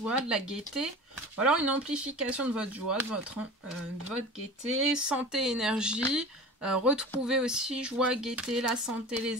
de la gaieté, ou alors une amplification de votre joie, de votre gaieté, santé, énergie. Retrouver aussi joie, gaieté, la santé,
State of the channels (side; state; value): both; normal; correlation 0.36